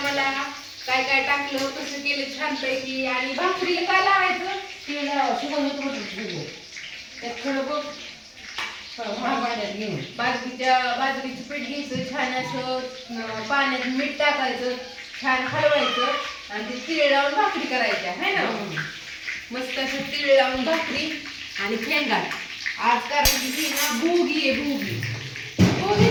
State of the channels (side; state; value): both; identical; correlation 1.00